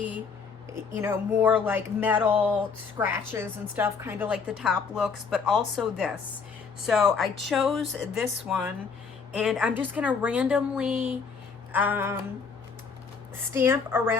you know, more like metal scratches and stuff, kind of like the top looks, but also this. So I chose this one, and I'm just gonna randomly stamp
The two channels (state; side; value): quieter; right; 5.4 dB